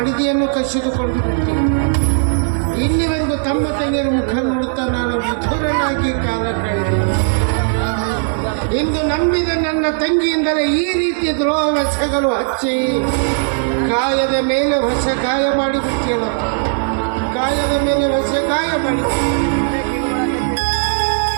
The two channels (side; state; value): left; silent; digital silence